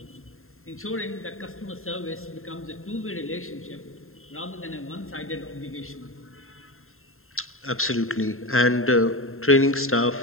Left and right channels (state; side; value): late; right; 0.61 ms